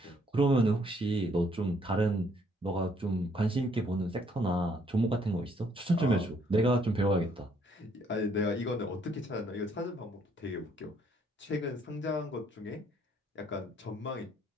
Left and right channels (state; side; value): normal; both; correlation 0.67